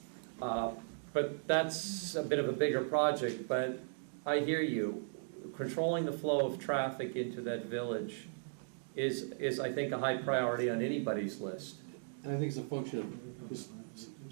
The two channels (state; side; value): silent; left; digital silence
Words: But that's a bit of a bigger project, but I hear you. Controlling the flow of traffic into that village is I think, a high priority on anybody's list. And I think it's a function of just